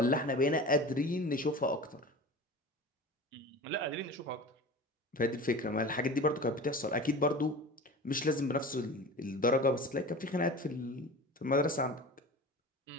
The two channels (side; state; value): both; normal; correlation 0.35